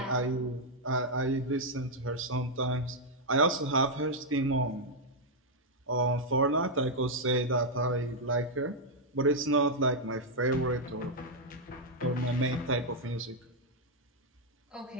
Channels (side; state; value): both; normal; correlation -0.03